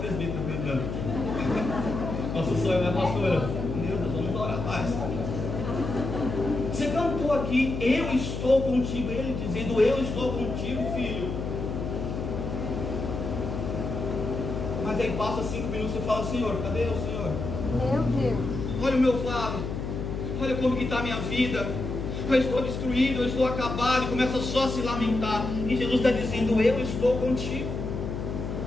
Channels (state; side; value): noise; left; hum, 4 dB below the sound